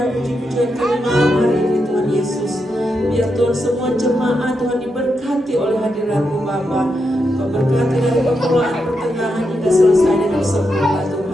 puji-pujian kami malam hari ini Tuhan Yesus. Biar Tuhan semua jemaat Tuhan diberkati oleh hadirat-Mu Bapa. Kau berkati dari permulaan pertengahan hingga selesai dengan sempurna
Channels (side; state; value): both; normal; correlation 0.84